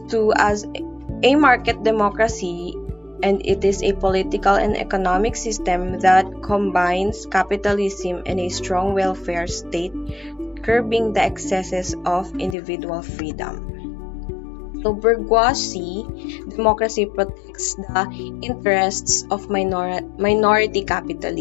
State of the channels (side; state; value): right; drops out; at 12.6 s